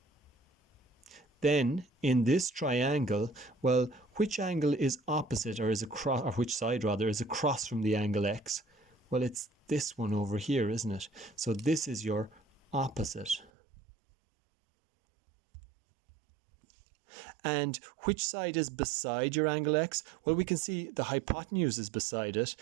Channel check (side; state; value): left; drops out; at 13.5 s